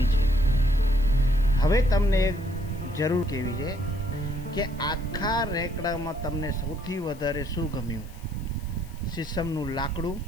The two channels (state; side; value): noise; left; hiss, 25 dB below the sound